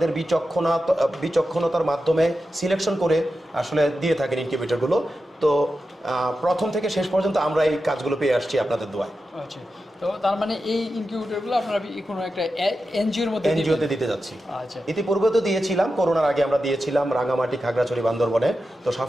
বিচক্ষণতার মাধ্যমে সিলেকশন করে আসলে দিয়ে থাকেন ইনকিউবেটরগুলো। তো প্রথম থেকে শেষ পর্যন্ত আমরা এই কাজগুলো পেয়ে আসছি আপনাদের দোয়ায়। আচ্ছা, তো তার মানে এই ইনকিউবেটরগুলো আপনারা কোনো একটা এনজিওতে দিতে যাচ্ছি। আচ্ছা, ইতিপূর্বে তো দিয়েছিলাম, করোনার আগে আমরা দিয়েছিলাম রাঙামাটি, খাগড়াছড়ি, বান্দরবনে। তো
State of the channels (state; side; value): normal; both; correlation 0.91